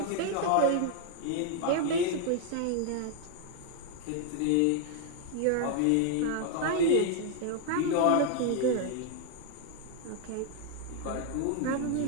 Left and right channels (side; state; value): both; different; correlation 0.00